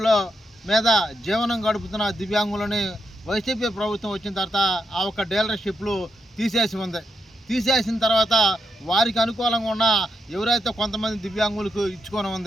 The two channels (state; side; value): normal; both; correlation 0.83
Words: మీద జీవనం గడుపుతున్న దివ్యాంగులని వైసీపీ ప్రభుత్వం వచ్చిన తర్వాత ఆ ఒక్క డీలర్షిప్లు తీసేసి ఉంది. తీసేసిన తర్వాత వారికి అనుకూలంగా ఉన్న ఎవరైతే కొంతమంది దివ్యాంగులకు ఇచ్చుకొని